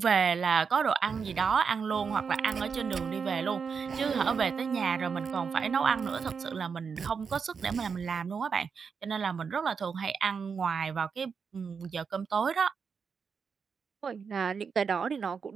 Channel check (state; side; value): quieter; left; 5.9 dB